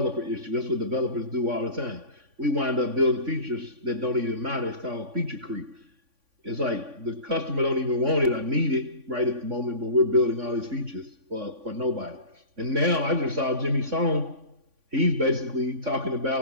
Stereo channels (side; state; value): left; late; 3.5 ms